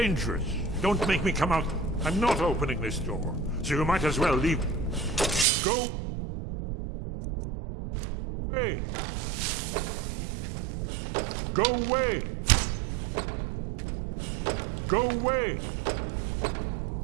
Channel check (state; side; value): drops out; left; at 5.5 s